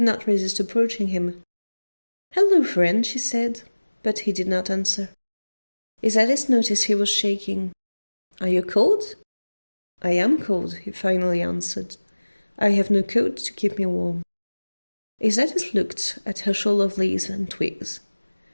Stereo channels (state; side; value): inverted; both; correlation -1.00